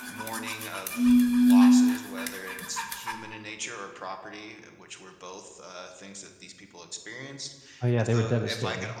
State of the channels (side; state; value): both; identical; correlation 1.00